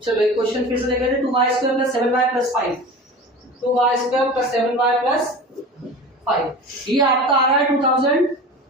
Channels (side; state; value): both; normal; correlation 0.35